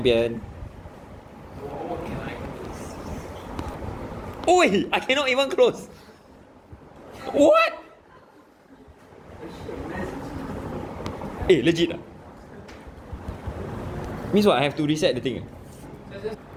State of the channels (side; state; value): both; identical; correlation 1.00